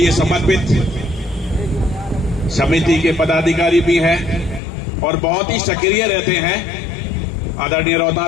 समर्पित समिति के पदाधिकारी भी हैं और बहुत ही सक्रिय रहते हैं आदरणीय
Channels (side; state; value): right; drops out; at 4.6 s